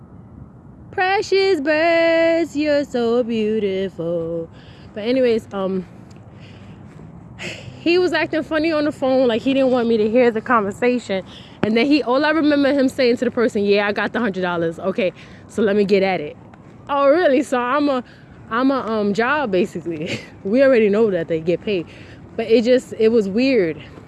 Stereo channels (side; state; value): both; identical; correlation 1.00